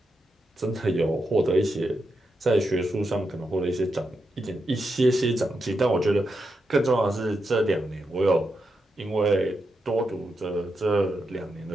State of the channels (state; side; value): normal; both; correlation 0.85